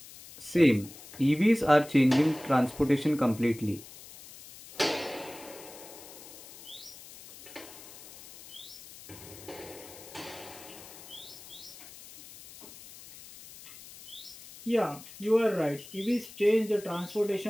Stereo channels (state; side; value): noise; left; hiss, 17 dB below the sound